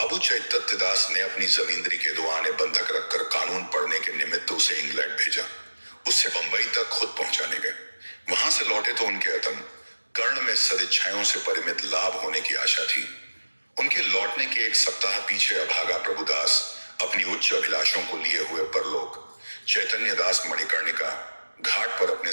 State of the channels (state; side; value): inverted; both; correlation -1.00